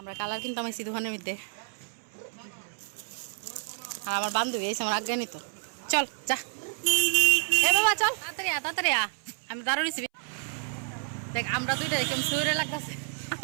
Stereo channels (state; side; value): silent; left; 58 dB below the other